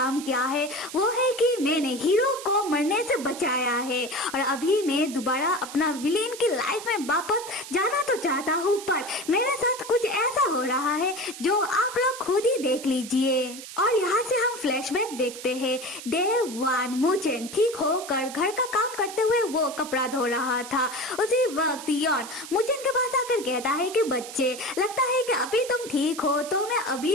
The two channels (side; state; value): right; noise; hiss, 12 dB below the sound